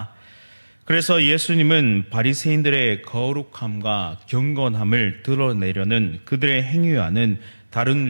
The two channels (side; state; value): both; inverted; correlation -1.00